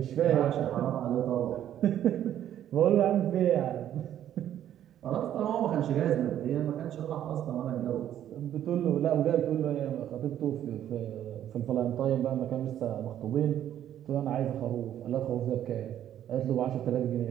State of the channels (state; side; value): quieter; left; 11.0 dB